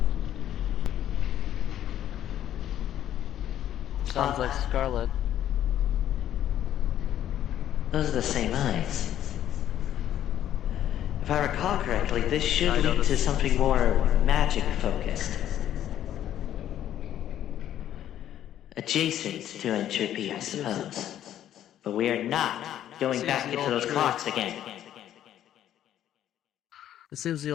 Sounds like Scarlet. Those are the same eyes. If I recall correctly, this should lead to something more magic-focused. Adjacent to entropy, I suppose. But we are not going back into those clocks again. It seems the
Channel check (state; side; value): quieter; right; 11.4 dB